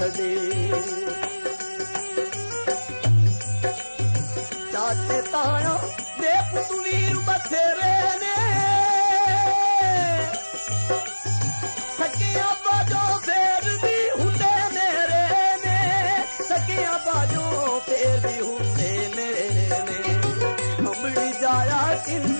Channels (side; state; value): both; inverted; correlation -1.00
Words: चाचे ताया दे पुत वीर बथेरे ने सकिया बाजो फेर भी हुंदे मेरे ने सकिया बाजो फेर भी हुंदे मेरे ने अमड़ी जाया